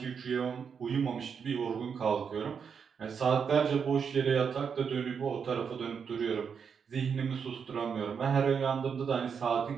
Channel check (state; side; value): quieter; left; 6.6 dB